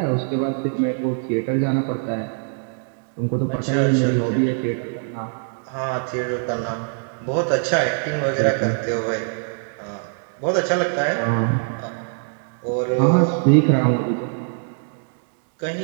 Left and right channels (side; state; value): left; silent; 64 dB below the other